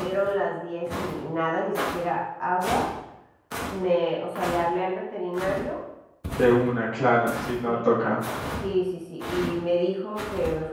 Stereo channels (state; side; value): identical; both; correlation 1.00